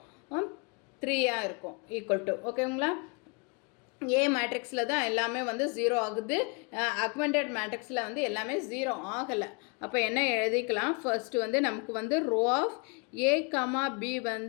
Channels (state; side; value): quieter; right; 32.0 dB